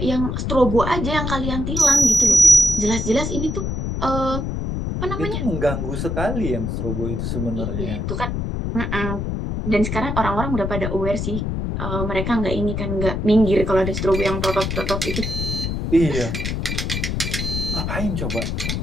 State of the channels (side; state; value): left; noise; rumble, 2 dB below the sound